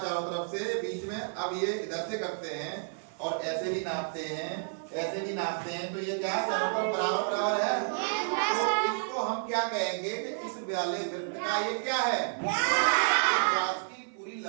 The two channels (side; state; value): left; silent; digital silence